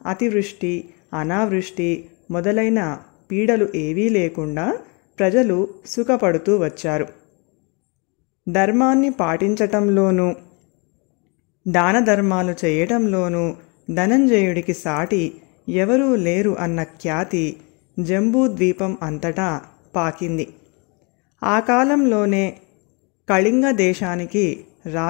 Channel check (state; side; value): quieter; right; 31.9 dB